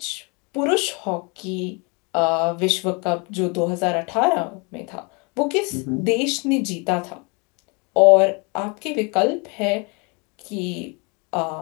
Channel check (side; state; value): right; quieter; 31.3 dB